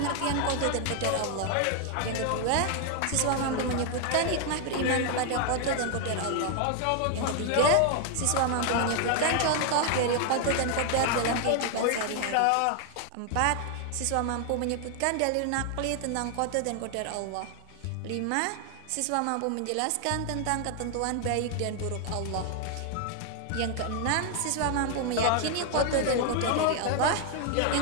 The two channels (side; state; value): both; different; correlation 0.00